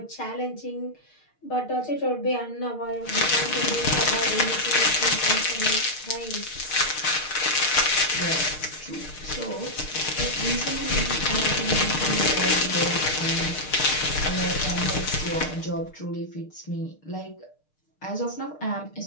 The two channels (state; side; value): late; right; 6.6 ms